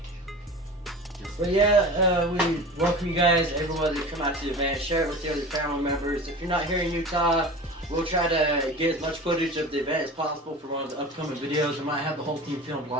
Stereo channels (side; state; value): both; normal; correlation 0.35